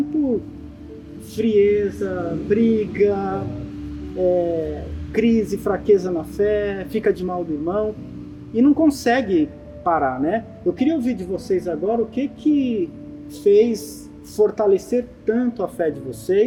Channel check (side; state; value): both; identical; correlation 1.00